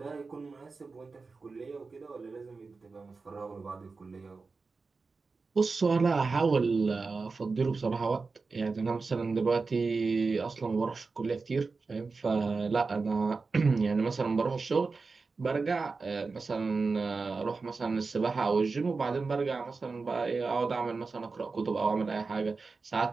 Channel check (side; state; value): left; quieter; 4.3 dB